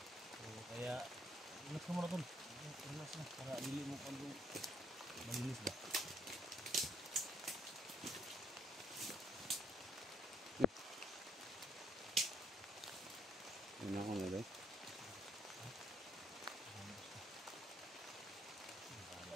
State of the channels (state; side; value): normal; both; correlation 0.68